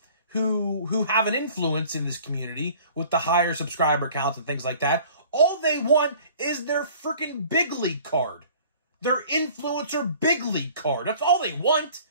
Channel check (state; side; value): inverted; both; correlation -0.49